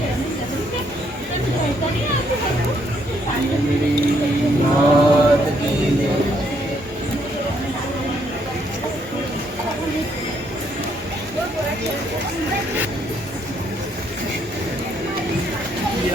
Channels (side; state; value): both; normal; correlation 0.71